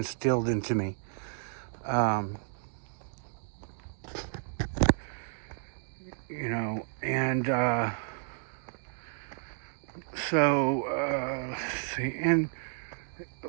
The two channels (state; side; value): silent; left; digital silence